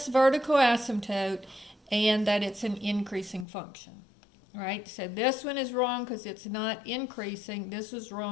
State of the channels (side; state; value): right; drops out; at 3.5 s